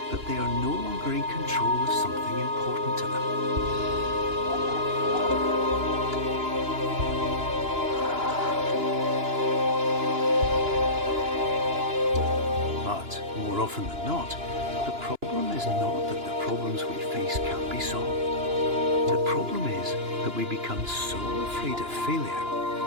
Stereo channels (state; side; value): late; left; 2.9 ms